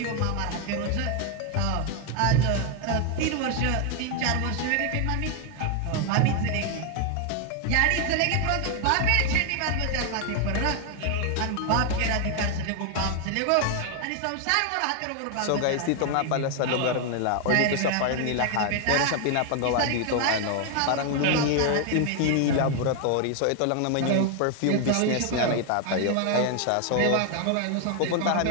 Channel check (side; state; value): both; different; correlation 0.00